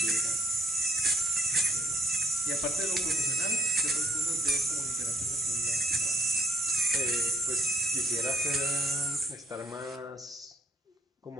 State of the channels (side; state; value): both; normal; correlation 0.68